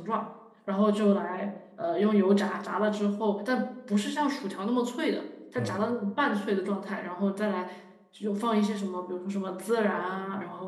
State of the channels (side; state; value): both; identical; correlation 1.00